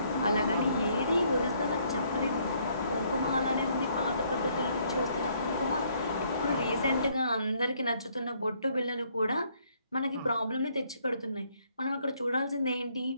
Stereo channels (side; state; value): both; inverted; correlation -0.68